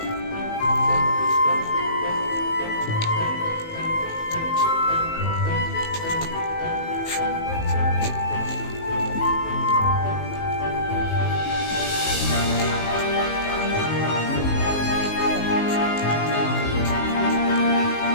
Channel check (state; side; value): late; right; 19 ms